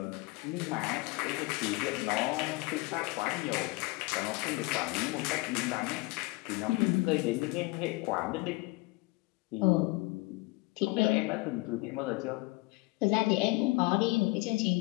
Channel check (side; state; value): right; quieter; 23.9 dB